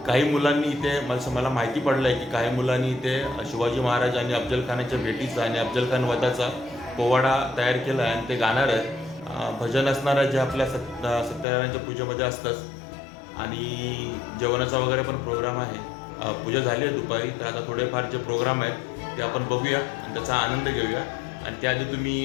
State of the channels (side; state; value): right; drops out; at 11.5 s